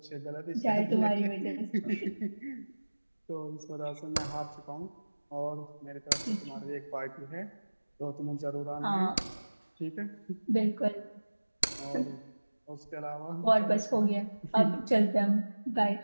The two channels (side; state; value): both; inverted; correlation -1.00